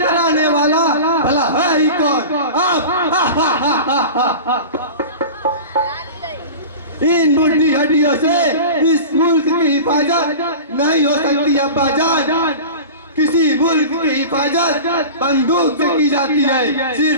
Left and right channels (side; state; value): both; inverted; correlation -0.34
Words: वाला भला है ही कौन? आप इन मुट्ठी हड्डियों से इस मुल्क की हिफाजत नहीं हो सकती अब्बाजान। किसी मुल्क की हिफाजत बंदूक से की जाती है,